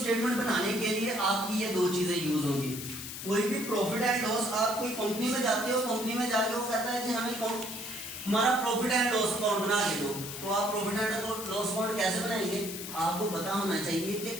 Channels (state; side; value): noise; left; hiss, 8 dB below the sound